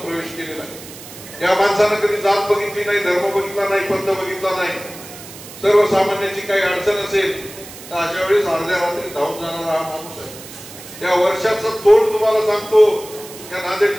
केलेला आहे. या माणसानं कधी जात बघितली नाही, धर्म बघितला नाही, पंथ बघितला नाही. सर्वसामान्याची काही अडचण असेल तर अशा वेळेस अर्ध्या रात्री धावून जाणारा हा माणूस आहे. या वर्षाचं तोंड तुम्हाला सांगतो, या नांदेड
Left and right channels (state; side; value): noise; right; hiss, 15 dB below the sound